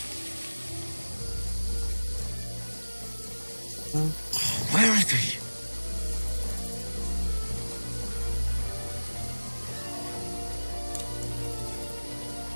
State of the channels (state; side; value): inverted; both; correlation -1.00